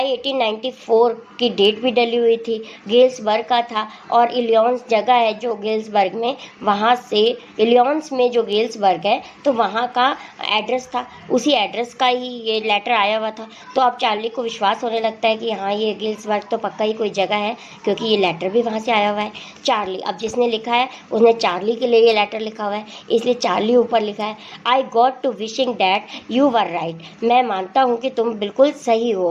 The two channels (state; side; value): identical; both; correlation 1.00